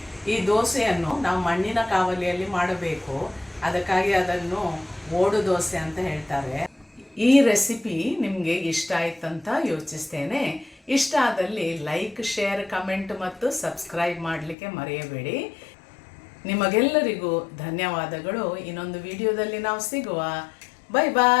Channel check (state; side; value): drops out; right; at 14.6 s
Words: ಈ ದೋಸೆಯನ್ನು ನಾವು ಮಣ್ಣಿನ ಕಾವಲಿಯಲ್ಲಿ ಮಾಡಬೇಕು. ಅದಕ್ಕಾಗಿ ಅದನ್ನು ಓಡು ದೋಸೆ ಅಂತ ಹೇಳ್ತಾರೆ. ಈ ರೆಸಿಪಿ ನಿಮಗೆ ಇಷ್ಟ ಆಯ್ತಂತ ಯೋಚಿಸ್ತೇನೆ. ಇಷ್ಟ ಆದಲ್ಲಿ ಲೈಕ್, ಶೇರ್, ಕಮೆಂಟ್ ಮತ್ತು ಸಬ್ಸ್ಕ್ರೈಬ್ ಮಾಡಲಿಕ್ಕೆ ಮರೆಯಬೇಡಿ. ನಿಮಗೆಲ್ಲರಿಗೂ ಧನ್ಯವಾದಗಳು. ಇನ್ನೊಂದು ವಿಡಿಯೋದಲ್ಲಿ ನಾವು ಸಿಗುವ. Bye